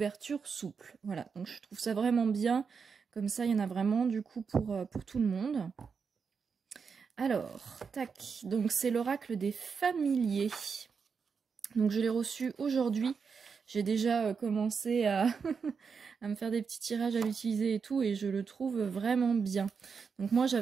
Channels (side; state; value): left; quieter; 5.8 dB